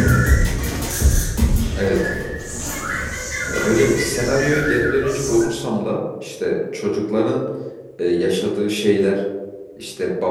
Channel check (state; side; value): identical; both; correlation 1.00